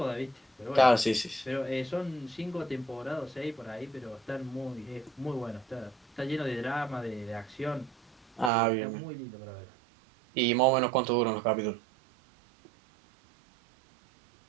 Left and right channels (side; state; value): left; drops out; at 8.5 s